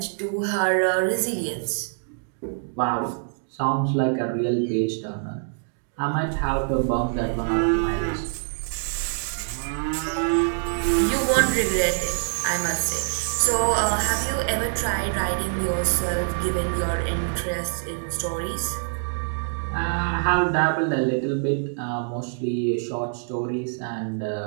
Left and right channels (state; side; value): silent; left; digital silence